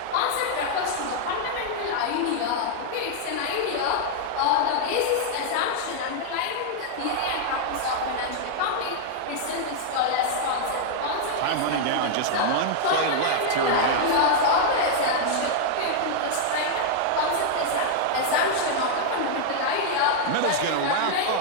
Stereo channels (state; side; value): different; both; correlation -0.01